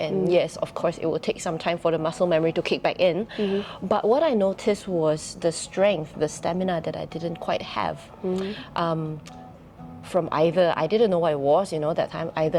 and yes, of course, it will take some time for the muscle memory to kick back in. But what I noticed was the strength, the stamina that I didn't quite have from either I didn't know what it was, that time, either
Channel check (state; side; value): identical; both; correlation 1.00